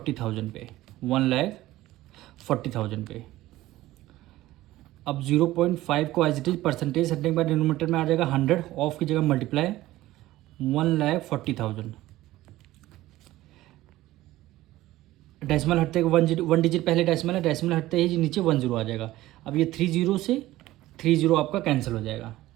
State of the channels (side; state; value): left; quieter; 16.3 dB